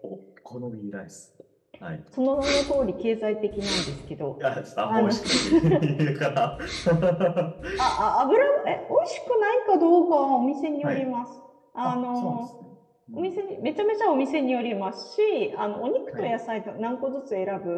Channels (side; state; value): both; identical; correlation 1.00